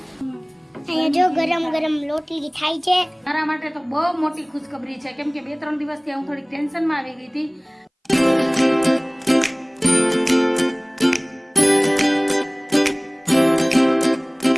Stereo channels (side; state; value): both; identical; correlation 1.00